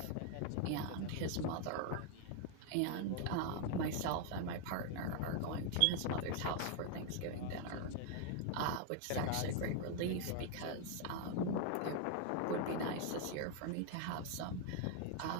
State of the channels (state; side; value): different; both; correlation 0.00